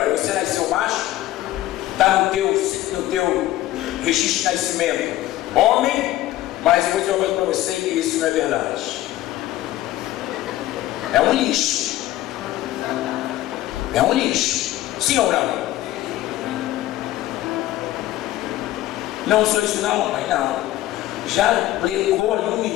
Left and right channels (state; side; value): quieter; right; 15.1 dB